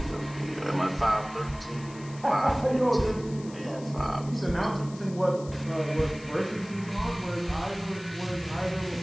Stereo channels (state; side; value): noise; left; hiss, 20 dB below the sound